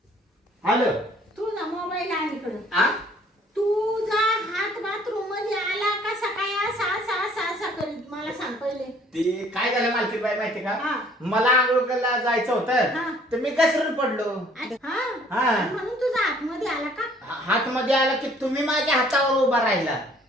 आलं. तुझा मोबाईल आहे इकडे. आ तुझा हात बाथरूम मध्ये आला का सकाळी असा असा असा असा करीत मला सांग पहिले. ते काय झालं मालकीन बाई माहिती का. हा. मला आंघोळ करायला जायचं हा. होतं तर मी घसरून पडलो. हा हा. म्हणून तुझा हात मध्ये आला का. हात मध्ये आला की तुम्ही माझ्या हातावर उभा राहिला.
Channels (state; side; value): normal; both; correlation 0.58